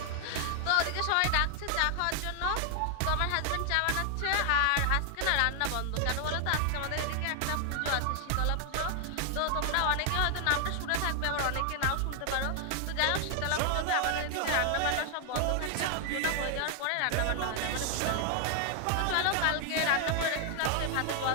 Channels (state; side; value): different; both; correlation 0.00